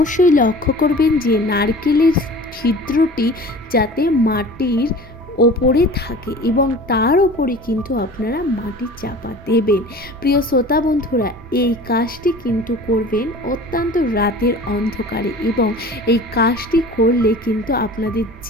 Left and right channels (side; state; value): both; normal; correlation 0.41